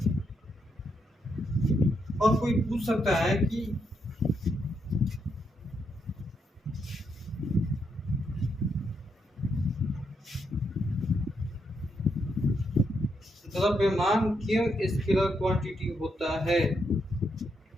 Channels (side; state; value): both; normal; correlation 0.79